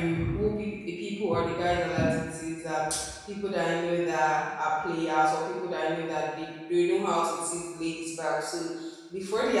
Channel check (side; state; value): both; identical; correlation 1.00